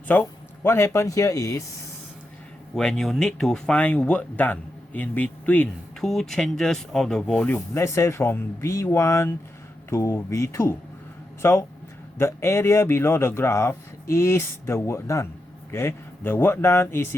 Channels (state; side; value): normal; both; correlation 0.86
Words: so what happened here is when you need to find work done in between two changes of the volume, let's say from V1 to V2. So the area below the graph is the work done. Okay, the work done is